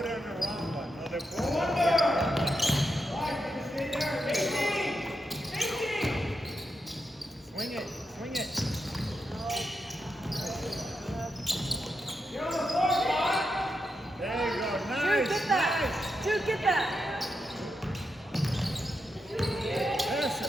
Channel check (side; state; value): both; normal; correlation 0.85